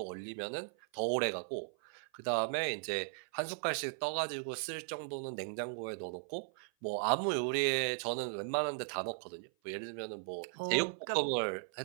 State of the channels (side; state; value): left; silent; 53 dB below the other